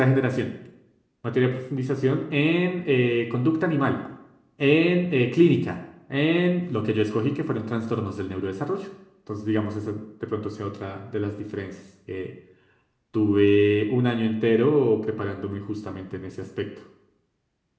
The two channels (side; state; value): both; identical; correlation 1.00